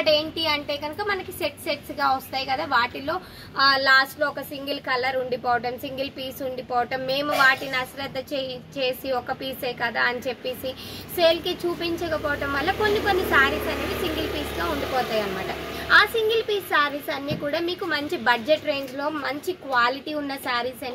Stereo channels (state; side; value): identical; both; correlation 1.00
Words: ఏంటి అంటే కనుక మనకి సెట్స్ గా వస్తాయి కదా, వాటిలో లాస్ట్ లో ఒక సింగిల్ కలర్ ఉండిపోవటం, సింగిల్ పీస్ ఉండిపోవటం, మేము వాటిని అశ్రద్ధ చేసి ఒక పీసే కదా అని చెప్పేసి సేల్ కి చూపించకపోవటం వల్ల కొన్ని శారీస్ అనేవి సింగిల్ పీస్ గా ఉండిపోతాయి అనమాట. ఆ సింగిల్ పీస్ శారీస్ అన్ని కూడా మీకు మంచి బడ్జెట్ రేంజ్ లో మంచి క్వాలిటీ ఉన్న శారీస్